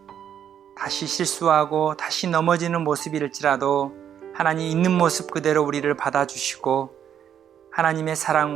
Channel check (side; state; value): left; quieter; 9.2 dB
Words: 다시 실수하고 다시 넘어지는 모습일지라도 하나님 있는 모습 그대로 우리를 받아주시고 하나님의